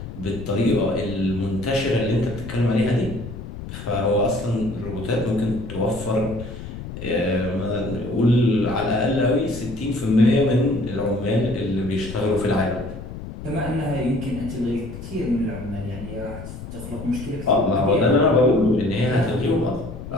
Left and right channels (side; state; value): left; noise; rumble, 10 dB below the sound